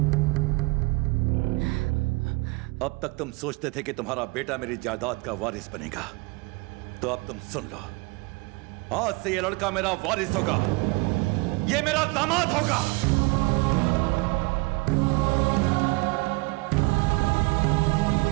अब तक तुम सोचते थे कि तुम्हारा बेटा मेरी जायदाद का वारिस बनेगा, तो अब तुम सुन लो, आज से ये लड़का मेरा वारिस होगा, ये मेरा दामाद होगा।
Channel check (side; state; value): left; quieter; 25.7 dB